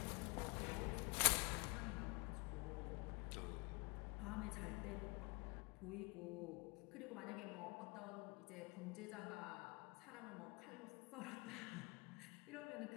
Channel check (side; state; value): right; quieter; 28.7 dB